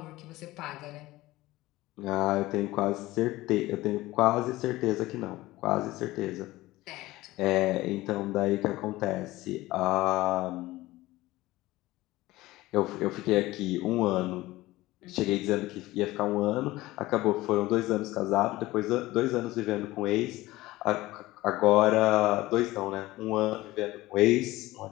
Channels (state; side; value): quieter; right; 18.2 dB